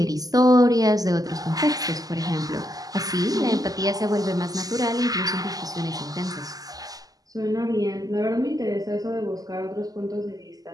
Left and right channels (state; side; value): late; left; 0.17 ms